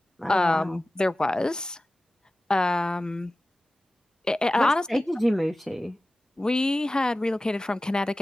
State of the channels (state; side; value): normal; both; correlation 0.96